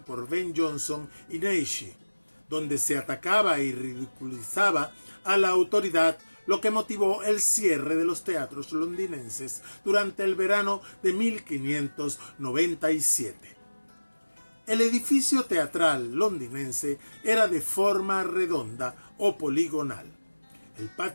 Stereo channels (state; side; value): inverted; both; correlation -1.00